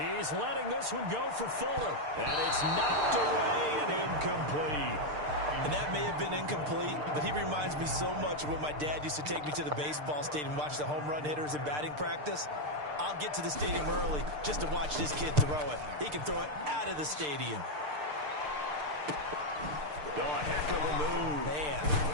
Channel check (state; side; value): late; left; 6.7 ms